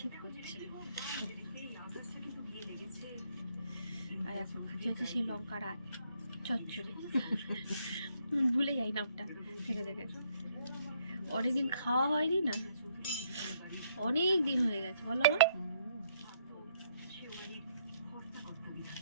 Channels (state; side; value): inverted; both; correlation -0.70